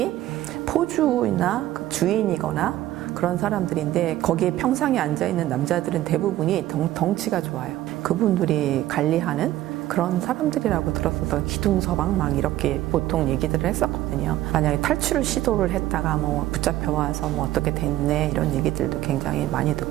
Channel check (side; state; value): left; quieter; 14.6 dB